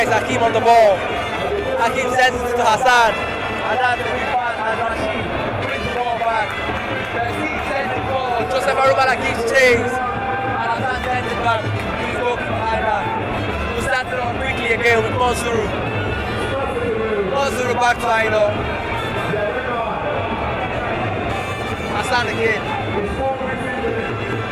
is Hakim on the ball. Hakim sends it to Hassan. And that's the big pass and Rashid brings the ball back. Sends it forward. Joseph Arumala gives chase. And Hassan sends it back to his goalkeeper Aina, who starts it on quickly again with Monsuru. Monsuru back to Aina. Hassan again.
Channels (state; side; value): identical; both; correlation 1.00